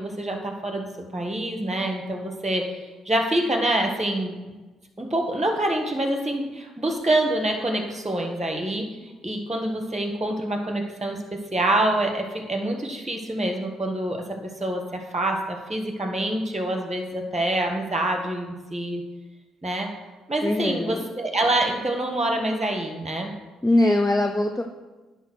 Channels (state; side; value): normal; both; correlation 0.77